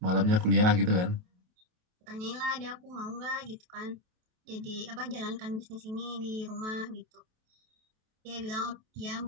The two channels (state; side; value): late; left; 28 ms